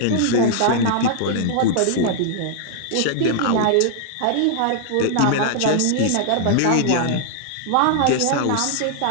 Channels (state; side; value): different; both; correlation -0.01